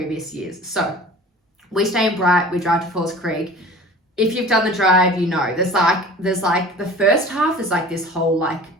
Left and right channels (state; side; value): normal; both; correlation 0.42